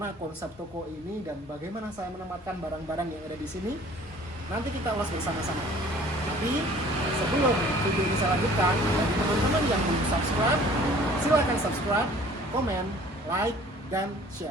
konsep toko ini, dan bagaimana saya menempatkan barang-barang yang ada di sini. Nanti kita ulas bersama-sama. Tapi sebelum video ini saya lanjutkan, bagi teman-teman yang belum subscribe, silakan subscribe, komen, like, dan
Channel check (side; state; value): both; normal; correlation 0.51